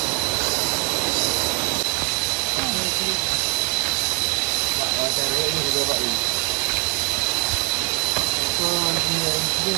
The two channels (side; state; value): left; quieter; 33.2 dB